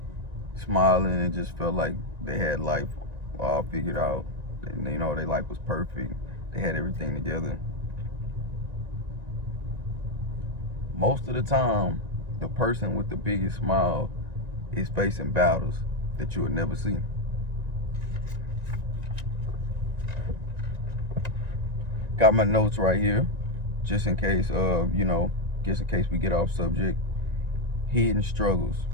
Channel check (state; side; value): late; left; 1.9 ms